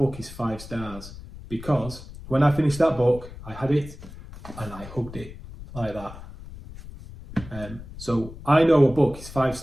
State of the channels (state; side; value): noise; left; rumble, 15 dB below the sound